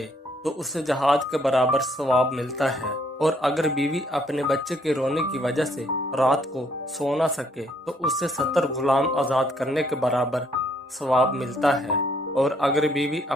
तो उसे जहाद के बराबर सवाब मिलता है और अगर बीवी अपने बच्चे के रोने की वजह से रात को सो ना सके तो उसे 70 गुलाम आजाद करने के बराबर सवाब मिलता है और अगर बीवी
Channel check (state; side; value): normal; both; correlation 0.68